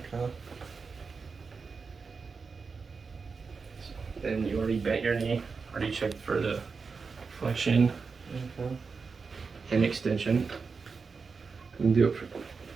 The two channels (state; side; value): quieter; left; 4.9 dB